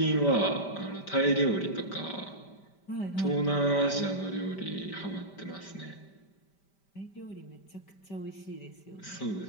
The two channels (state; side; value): late; right; 5.1 ms